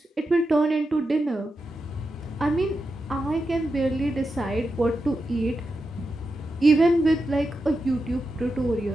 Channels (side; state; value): both; normal; correlation 0.88